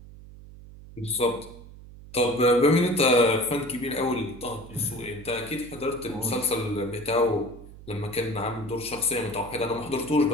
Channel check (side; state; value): right; noise; hum, 18 dB below the sound